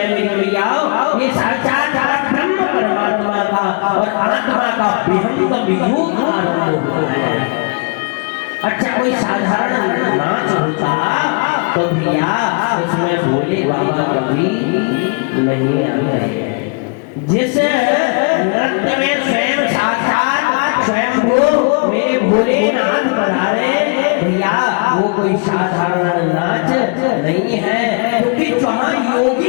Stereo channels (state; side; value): quieter; right; 35.0 dB